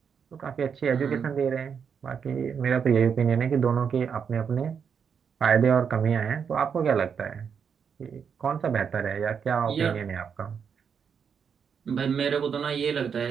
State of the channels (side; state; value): left; quieter; 6.8 dB